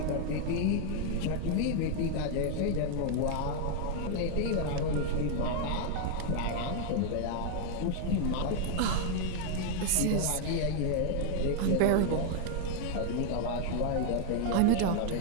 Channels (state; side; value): different; both; correlation 0.00